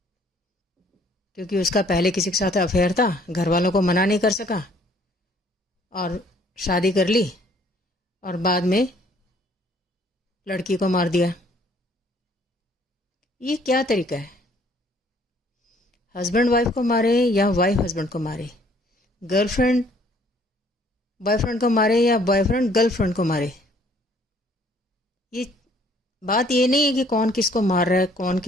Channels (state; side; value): normal; both; correlation 0.61